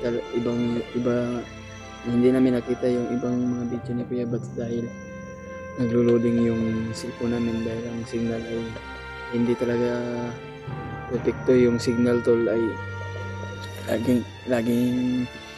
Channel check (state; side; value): identical; both; correlation 1.00